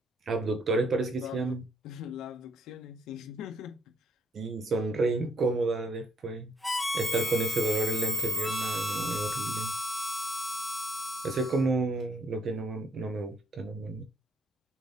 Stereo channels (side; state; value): both; normal; correlation 0.72